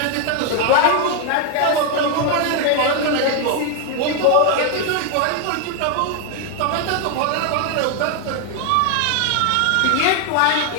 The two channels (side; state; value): both; different; correlation 0.00